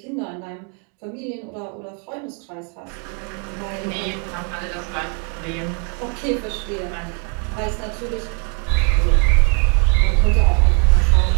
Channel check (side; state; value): left; quieter; 39.5 dB